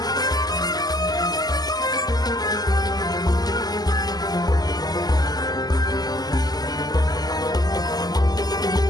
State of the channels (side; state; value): right; late; 0.19 ms